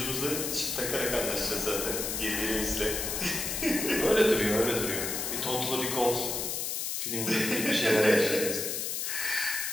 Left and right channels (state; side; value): noise; left; hiss, 2 dB below the sound